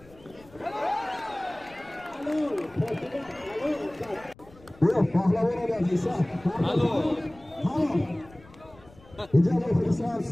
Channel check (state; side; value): noise; left; rumble, 24 dB below the sound